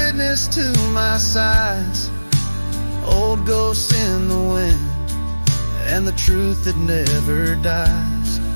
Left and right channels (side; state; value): both; inverted; correlation -1.00